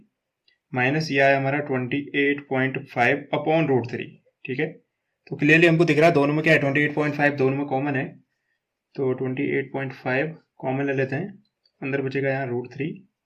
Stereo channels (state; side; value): identical; both; correlation 1.00